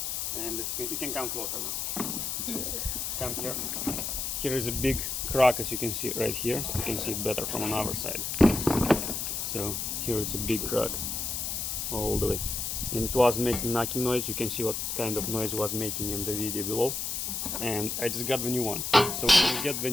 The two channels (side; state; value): left; noise; hiss, 2 dB below the sound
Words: and as you can come closer now. Come here. Here is a big crack, as you can see right here. You can see it better from another side. So here it's a big crack all the way, and it was making knocking noise. You can see what kind of noise it was making in the video below. And I just got the new one. So when you get the